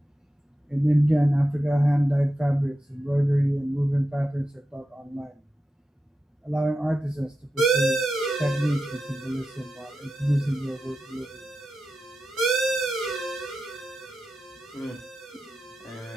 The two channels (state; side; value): normal; both; correlation 0.91